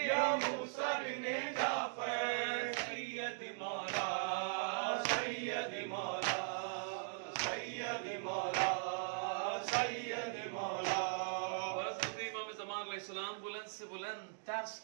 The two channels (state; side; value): silent; left; digital silence